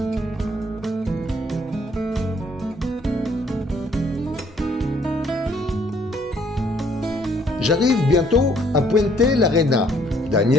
J'arrive bientôt à Puente l'Arena.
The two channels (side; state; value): both; normal; correlation 0.64